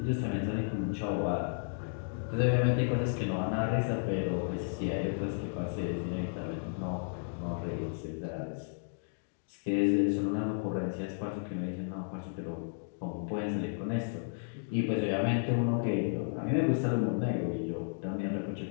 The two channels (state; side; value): silent; right; digital silence